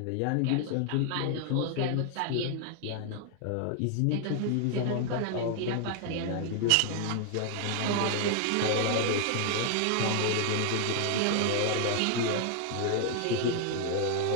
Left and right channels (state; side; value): different; both; correlation 0.00